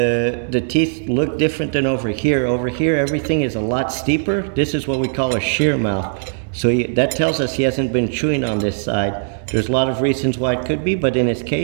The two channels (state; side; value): silent; left; digital silence